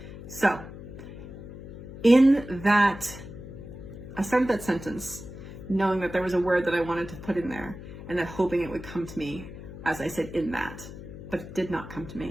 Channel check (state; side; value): noise; left; hum, 13 dB below the sound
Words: So, in that, I started that sentence knowing that there was a word that I wanted to put in there, and that hoping it would come to me as I said in that, but it did not come to